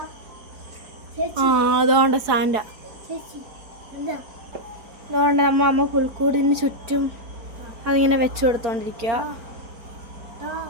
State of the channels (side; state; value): left; late; 4.8 ms